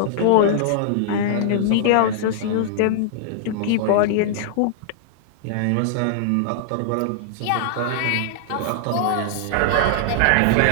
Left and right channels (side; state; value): both; different; correlation -0.01